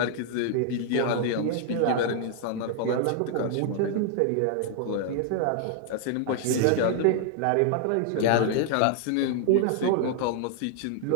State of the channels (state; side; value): different; both; correlation 0.00